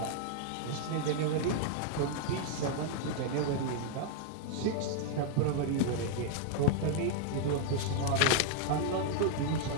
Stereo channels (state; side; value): different; both; correlation 0.00